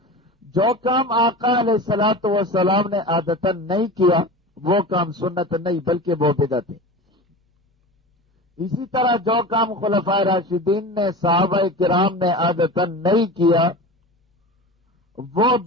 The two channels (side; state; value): both; normal; correlation 0.32